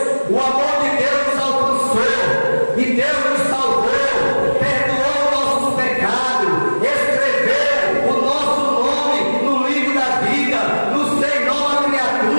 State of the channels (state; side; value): inverted; both; correlation -1.00